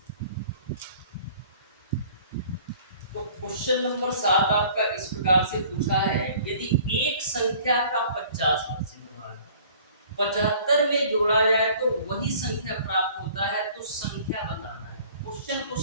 तो क्वेश्चन नंबर 7 आपका इस प्रकार से पूछा है, यदि एक संख्या का 50% भाग 75 में जोड़ा जाए तो वही संख्या प्राप्त होता है, तो संख्या बताना है। क्वेश्चन को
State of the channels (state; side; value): inverted; both; correlation -0.52